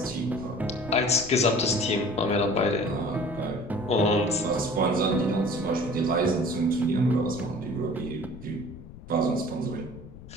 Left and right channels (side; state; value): left; noise; rumble, 16 dB below the sound